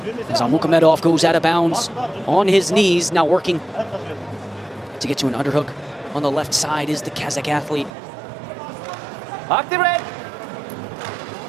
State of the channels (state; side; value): drops out; left; at 7.9 s